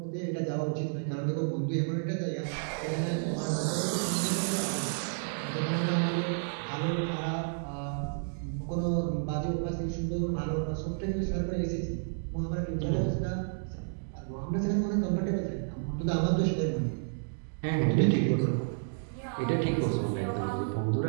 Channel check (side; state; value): left; silent; digital silence